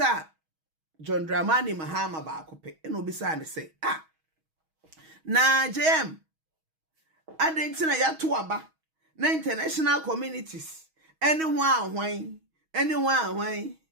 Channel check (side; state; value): left; late; 6.3 ms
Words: John Dramani Mahama ba akope na obisa ne say na JM adentina ya to aba na international communities anyone